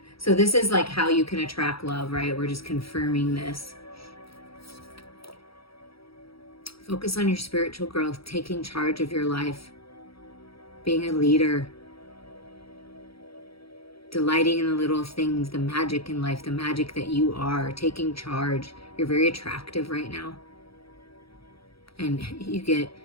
So this is like how you can attract love, right? We're just confirming this. Focus on your spiritual growth, taking charge of your life, being a leader, delighting in the little things, the magic in life, the magic that you are, taking charge. You're very attractive right now. And you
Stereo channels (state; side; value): late; right; 0.75 ms